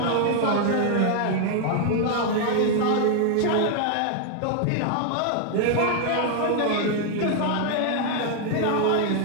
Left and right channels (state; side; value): different; both; correlation 0.00